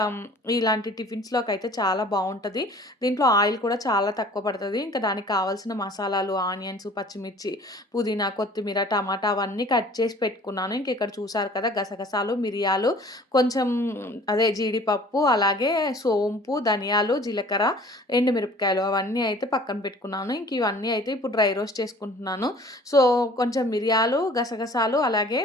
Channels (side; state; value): both; normal; correlation 0.49